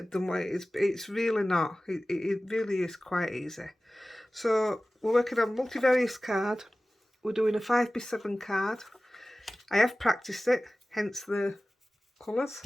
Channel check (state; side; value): normal; both; correlation 0.97